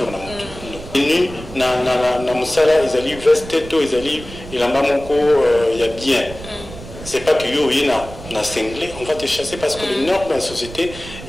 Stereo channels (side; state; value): right; noise; rumble, 14 dB below the sound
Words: na moto ni na musala ils allaient veste to ils allaient il en bas moko il y a bien c'est pas que yo yina na cinglé on va te chasser parce que le nord de la société